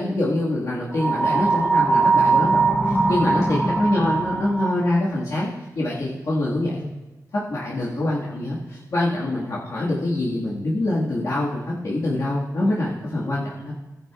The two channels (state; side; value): normal; both; correlation 0.88